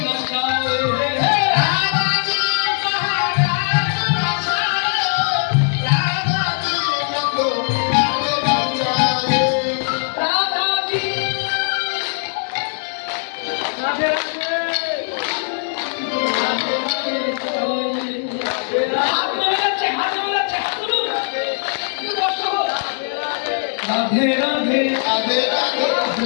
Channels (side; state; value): right; silent; 66 dB below the other